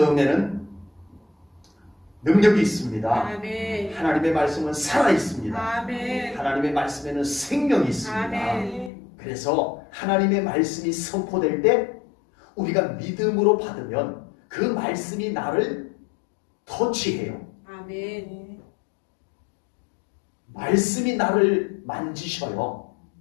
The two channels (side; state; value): right; drops out; at 8.9 s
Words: 능력이 있습니다. 아멘. 하나님의 말씀은 살아 있습니다. 아멘. 하나님의 말씀에는 생명이 있습니다. 아멘. 그래서 하나님의 말씀이 선포될 때 우리가 믿음으로 받으면 그 말씀이 나를 터치해요. 아멘. 말씀이 나를 만지셔요.